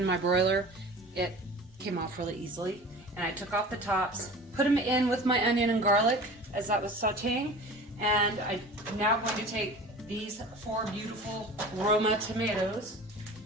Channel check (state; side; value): normal; both; correlation 0.39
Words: my broiler, it came off really easily. And I took off the tops, put them in with my onion and garlic as that was sauteing. And I'm now going to take these 4 beautiful Roma tomatoes.